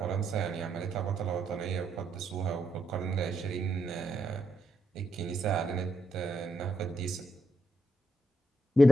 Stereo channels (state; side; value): normal; both; correlation 0.80